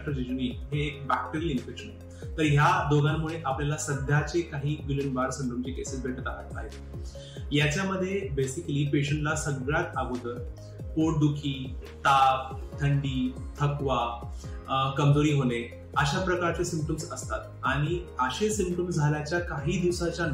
जेजुनी हे एक बॅक्टेरियल इन्फेक्शन आहे. तर ह्या दोघांमुळे आपल्याला सध्याचे काही गिलेन-बार सिंड्रोमचे केसेस भेटत आहेत. याच्यामध्ये बेसिकली पेशंटला सगळ्यात अगोदर पोटदुखी, ताप, थंडी, थकवा, कमजोरी होणे अशा प्रकारचे सिम्पटम्स असतात. आणि असे सिम्पटम्स झाल्याच्या काही दिवसाच्या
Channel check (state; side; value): identical; both; correlation 1.00